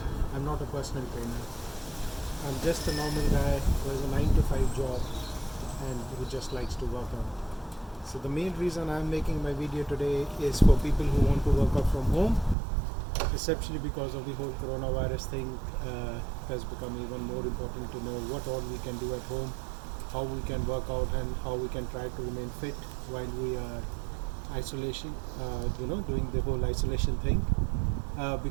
I'm not a personal trainer. I'm just a normal guy who has a 9 to 5 job and who just likes to work out. So the main reason I'm making my video today is for people who want to work out from home, essentially because of the whole coronavirus thing. Has become even more important to know what all we can do at home, how we can work out, and how we can try to remain fit while we are isolation, doing the whole isolation thing.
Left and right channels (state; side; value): drops out; left; at 12.6 s